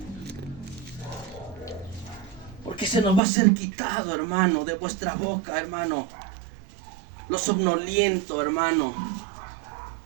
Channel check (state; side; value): drops out; left; at 3.2 s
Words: Porque se nos va a ser quitado, hermano, de vuestra boca, hermano, lo somnoliento, hermano.